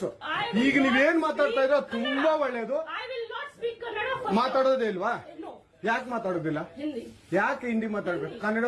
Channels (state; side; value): identical; both; correlation 1.00